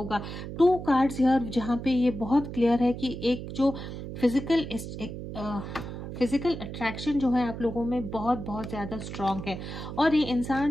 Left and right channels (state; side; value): noise; right; hum, 8 dB below the sound